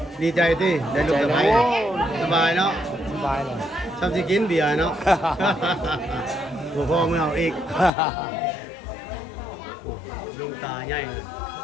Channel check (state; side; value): drops out; right; at 7.9 s